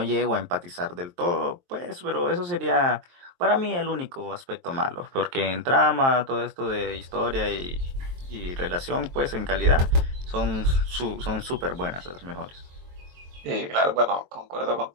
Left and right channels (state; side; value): late; left; 23 ms